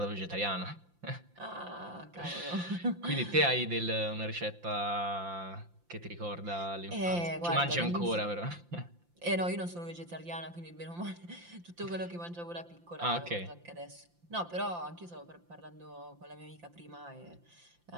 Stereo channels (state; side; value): late; left; 5.8 ms